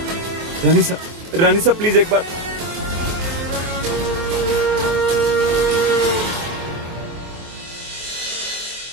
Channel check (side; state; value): left; late; 24 ms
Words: रानी साहब प्लीज एक बार।